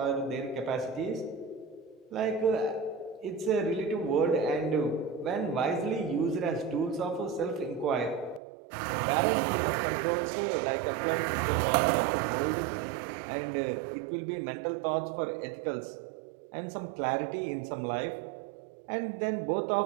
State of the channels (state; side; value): drops out; left; at 8.4 s